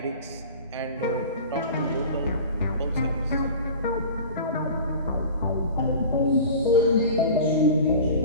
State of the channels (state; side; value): inverted; both; correlation -0.38